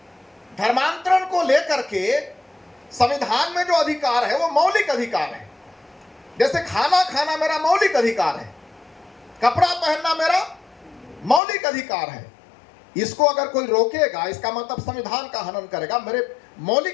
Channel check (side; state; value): right; drops out; at 11.4 s